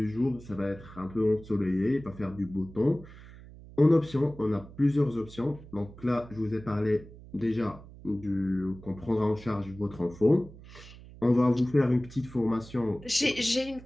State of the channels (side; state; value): right; noise; hum, 18 dB below the sound